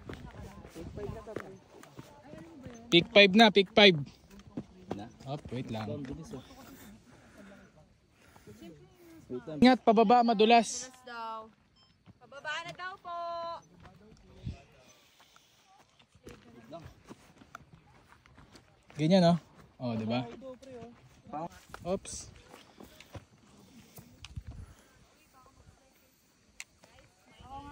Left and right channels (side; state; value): both; identical; correlation 1.00